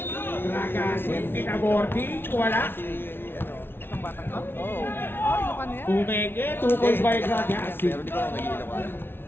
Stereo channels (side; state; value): right; late; 0.11 ms